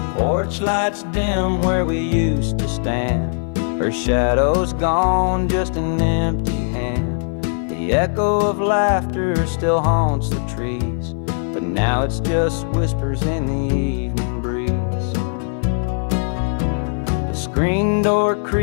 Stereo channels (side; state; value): right; silent; digital silence